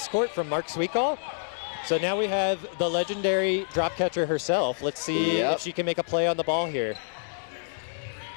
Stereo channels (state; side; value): silent; right; digital silence